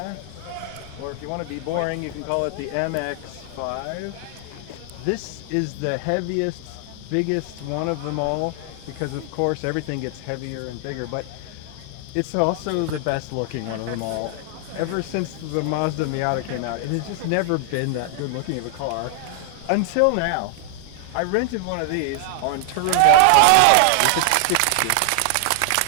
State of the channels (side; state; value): both; different; correlation 0.00